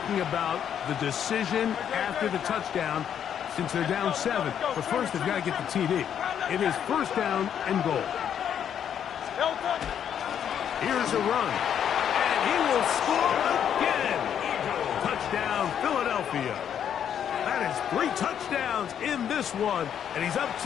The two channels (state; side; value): quieter; right; 9.0 dB